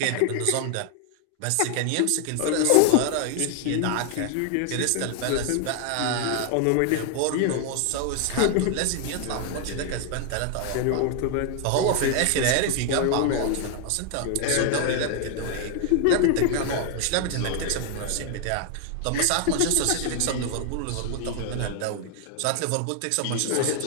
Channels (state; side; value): different; both; correlation 0.00